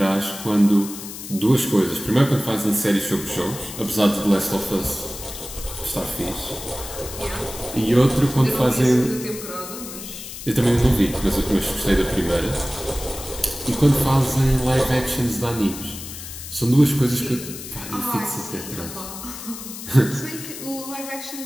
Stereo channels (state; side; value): noise; left; hiss, 11 dB below the sound